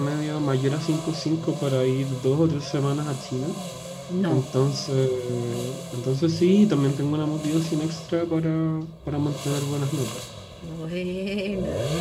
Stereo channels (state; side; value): identical; both; correlation 1.00